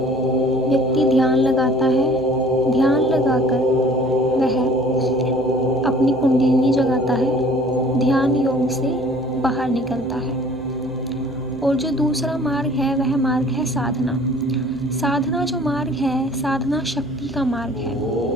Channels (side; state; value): right; noise; hum, 19 dB below the sound